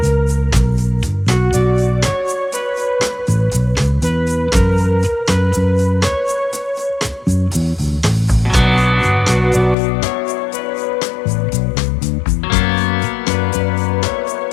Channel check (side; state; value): right; drops out; at 9.8 s